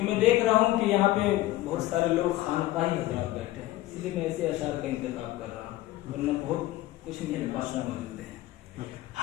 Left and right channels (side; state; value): right; quieter; 16.2 dB